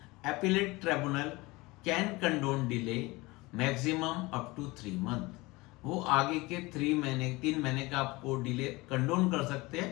appellate tribunal can condone delay maximum up to 3 month. वो आगे के 3 महीने का आपको डिले कंडोन कर सकते हैं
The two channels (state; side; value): quieter; right; 22.5 dB